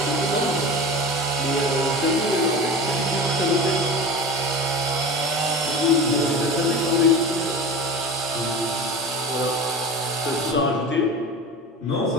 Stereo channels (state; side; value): normal; both; correlation 0.30